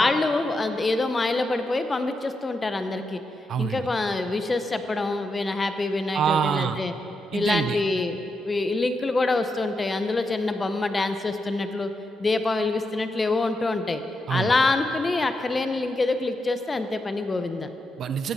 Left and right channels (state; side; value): normal; both; correlation 0.84